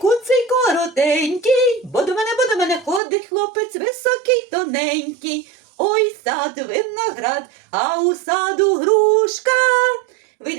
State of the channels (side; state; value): left; drops out; at 3.0 s